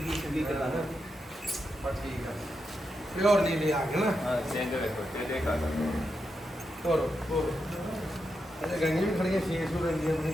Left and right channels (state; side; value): normal; both; correlation 0.86